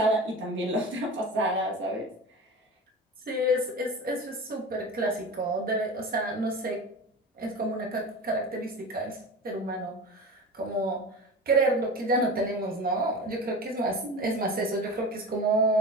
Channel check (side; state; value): both; normal; correlation 0.31